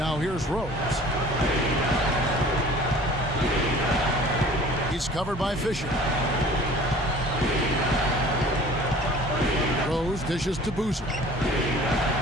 here's Rose. He's covered by Fisher. Rose dishes to Boozer.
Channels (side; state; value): both; normal; correlation 0.47